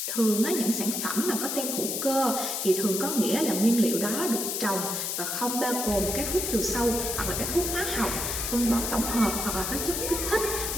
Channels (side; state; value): left; noise; hiss, 2 dB below the sound